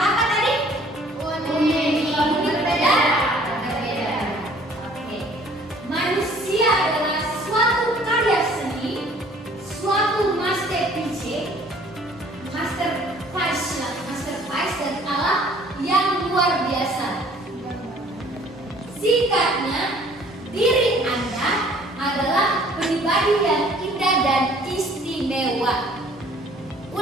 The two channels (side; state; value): both; normal; correlation 0.55